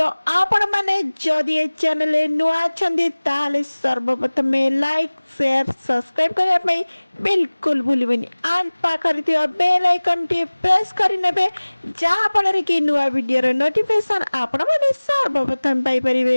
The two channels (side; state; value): both; inverted; correlation -1.00